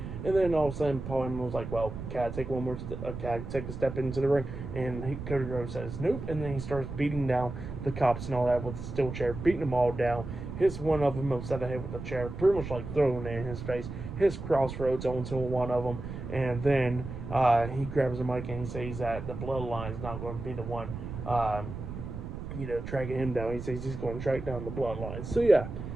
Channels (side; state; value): right; noise; rumble, 8 dB below the sound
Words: And then all of a sudden, Paul Heyman was like, well, can I take can I take a step into the ring? And Cody Rhodes says, nope. And then he starts beating down the cops and all that with the steel chair, beating them all down. Hits one of them upside the head with the chair, pretty much throwing it in his face. Hits crossroads onto one of them. And then he grabs the mic and he says that the Bloodline's not going to be the one, tracking him down. He says he's going to track down the Bloodline. So yeah,